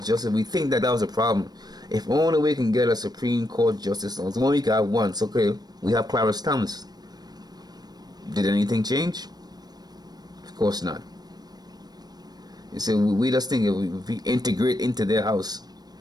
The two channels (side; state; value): left; late; 0.19 ms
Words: justice. We think that was a problem. If only we can get a Supreme Court justice, only we can have one. So, okay, we have Clarence Thomas. Did anything change? Of course not. You see, we just think if we integrate into their house,